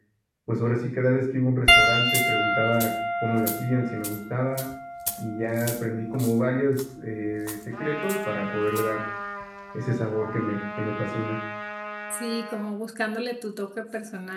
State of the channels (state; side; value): identical; both; correlation 1.00